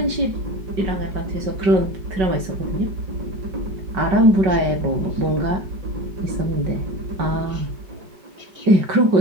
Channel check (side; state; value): left; late; 5.3 ms